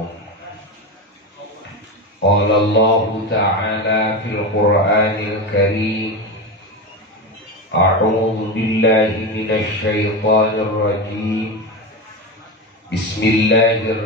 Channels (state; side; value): normal; both; correlation 0.19